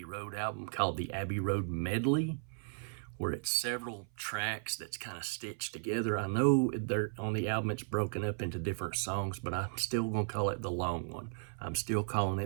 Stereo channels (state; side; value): silent; left; 54 dB below the other